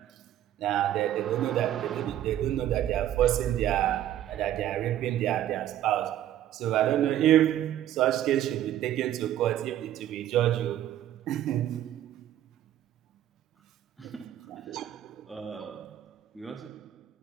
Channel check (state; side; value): quieter; left; 12.0 dB